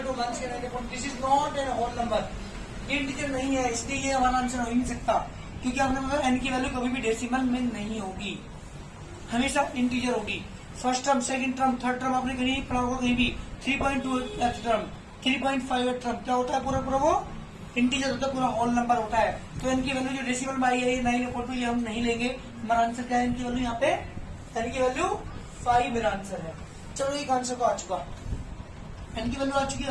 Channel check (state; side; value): identical; both; correlation 1.00